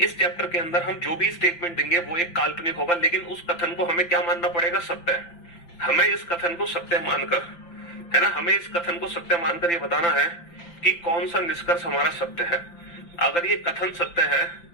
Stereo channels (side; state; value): right; late; 5.8 ms